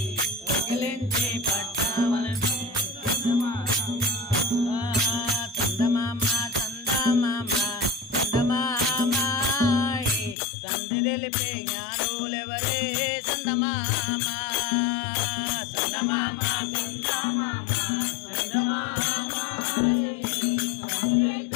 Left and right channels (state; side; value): drops out; right; at 10.4 s